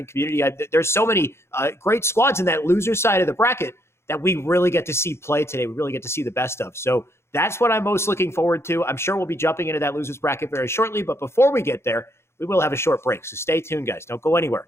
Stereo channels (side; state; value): right; late; 0.12 ms